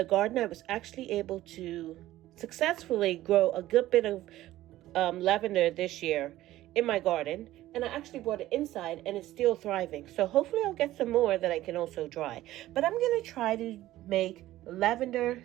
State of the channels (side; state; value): left; quieter; 15.2 dB